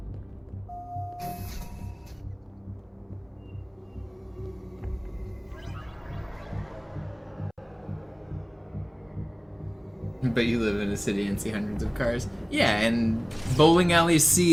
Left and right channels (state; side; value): identical; both; correlation 1.00